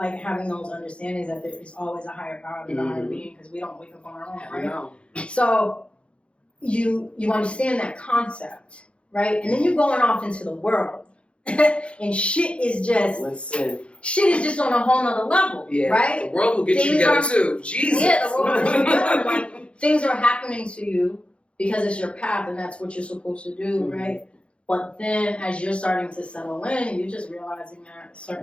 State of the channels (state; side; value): late; right; 0.059 ms